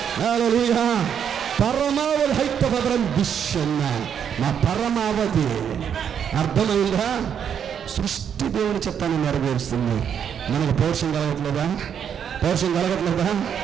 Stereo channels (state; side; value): quieter; left; 8.2 dB